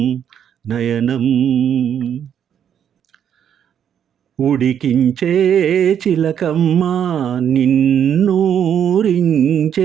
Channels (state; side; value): quieter; left; 8.9 dB